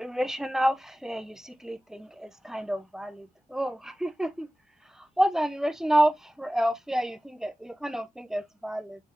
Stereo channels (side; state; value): both; normal; correlation 0.96